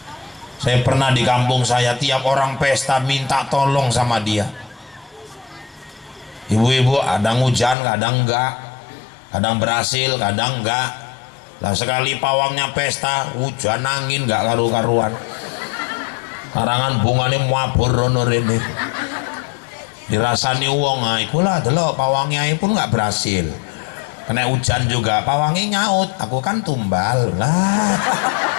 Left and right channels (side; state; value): right; drops out; at 7.8 s